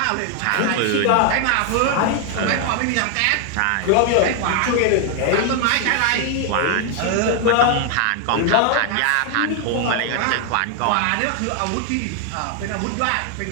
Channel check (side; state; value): both; different; correlation 0.00